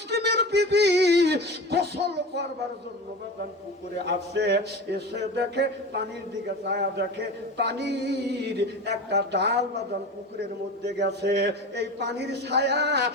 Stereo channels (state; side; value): normal; both; correlation 0.30